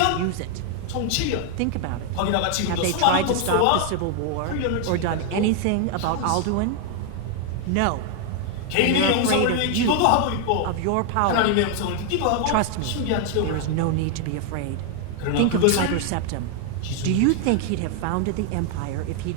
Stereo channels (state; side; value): different; both; correlation 0.00